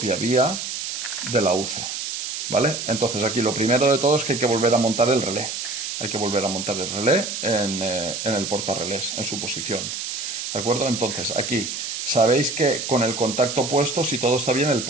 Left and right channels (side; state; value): right; noise; hiss, 5 dB below the sound